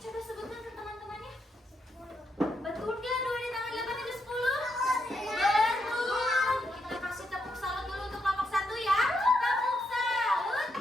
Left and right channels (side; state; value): both; normal; correlation 0.80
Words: Coba sebutkan ke teman-temannya. Betul nggak 2 ditambah 8 itu 10? Betul. Kita kasih tepuk salut dulu untuk kelompok 1 ya. Tepuk salut.